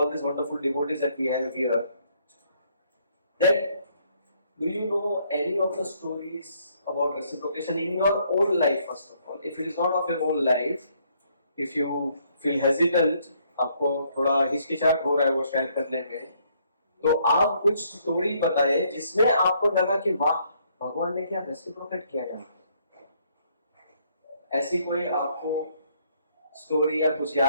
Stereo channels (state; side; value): inverted; both; correlation -0.69